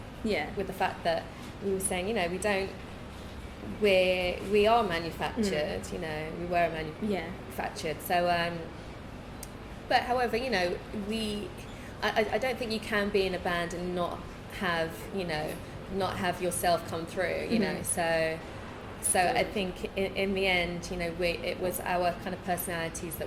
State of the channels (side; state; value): both; identical; correlation 1.00